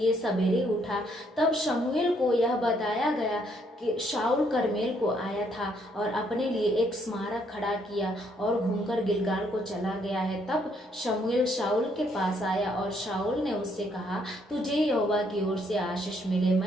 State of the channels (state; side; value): normal; both; correlation 0.70